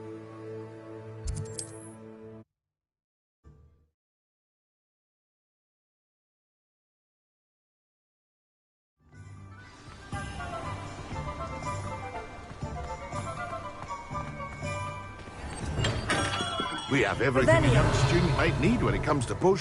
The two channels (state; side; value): identical; both; correlation 1.00